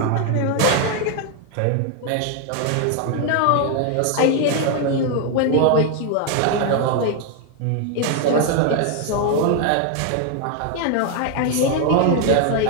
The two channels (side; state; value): both; different; correlation 0.00